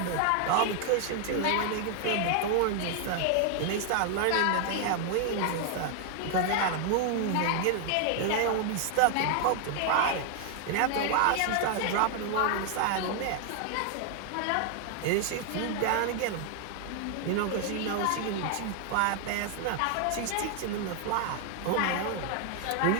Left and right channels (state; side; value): different; both; correlation 0.00